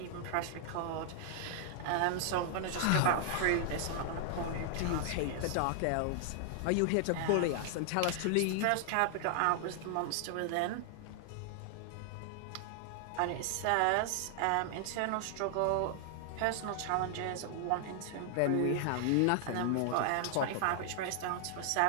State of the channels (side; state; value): both; different; correlation 0.00